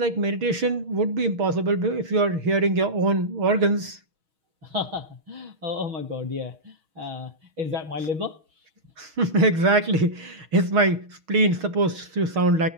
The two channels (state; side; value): late; left; 6.3 ms